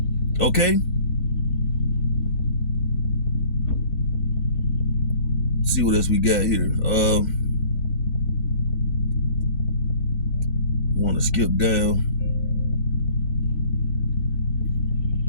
Okay. Let's see what else we got here. Want to skip down.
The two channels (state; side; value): late; right; 4.5 ms